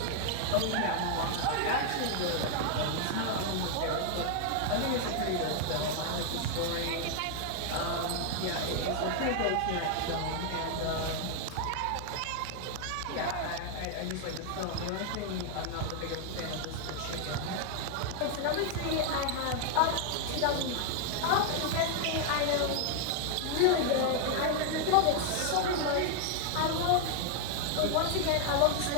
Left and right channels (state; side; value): different; both; correlation 0.00